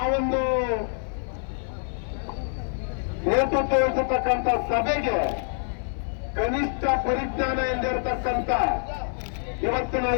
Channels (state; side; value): silent; right; 56 dB below the other